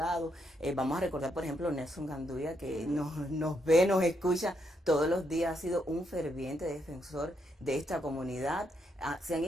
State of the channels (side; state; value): both; normal; correlation 0.78